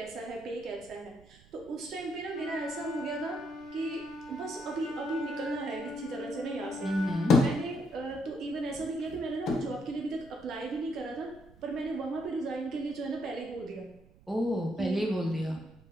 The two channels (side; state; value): right; noise; rumble, 24 dB below the sound